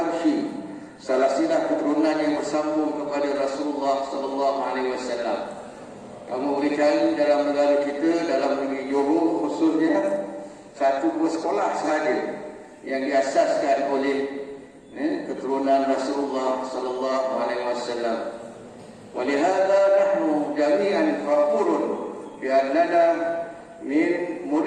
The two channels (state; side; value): identical; both; correlation 1.00